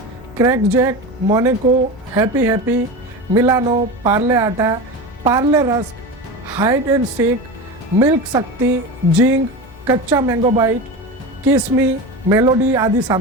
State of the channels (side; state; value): both; normal; correlation 0.26